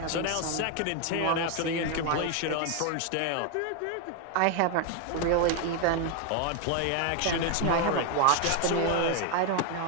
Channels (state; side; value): different; both; correlation 0.01